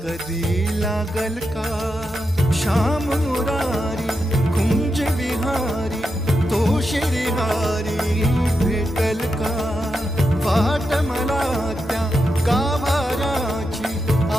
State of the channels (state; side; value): normal; both; correlation 0.86